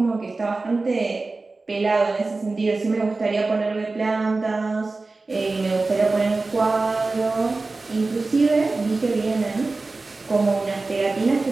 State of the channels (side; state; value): left; quieter; 3.5 dB